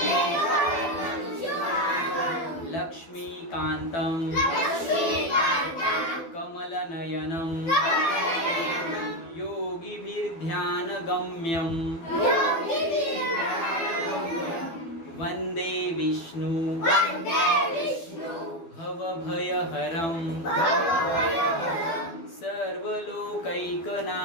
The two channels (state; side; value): late; right; 12 ms